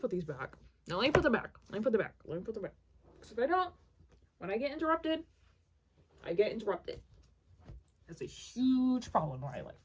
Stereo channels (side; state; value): both; identical; correlation 1.00